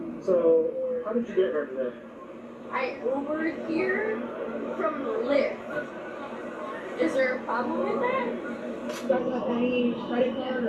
So, how did you get here today? I Ubered here from Lyft. Is there a problem with that? You guys have any credit card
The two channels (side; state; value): both; identical; correlation 1.00